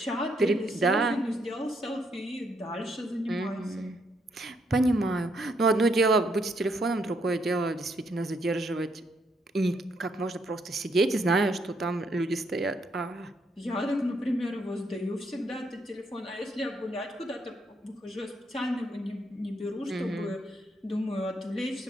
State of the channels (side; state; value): both; normal; correlation 0.74